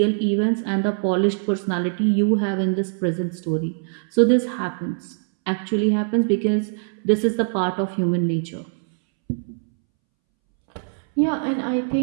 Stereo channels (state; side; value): silent; left; 64 dB below the other